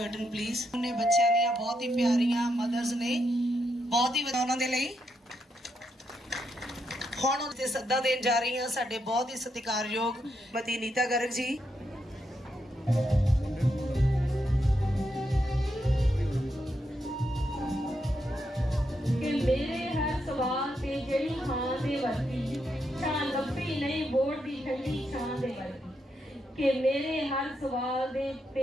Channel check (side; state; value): both; normal; correlation 0.81